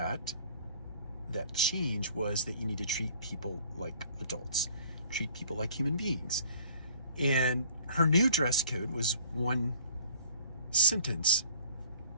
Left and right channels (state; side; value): inverted; both; correlation -0.53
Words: change was that you need to treat people like adults, treat people like human beings. And her new dress code was one sentence,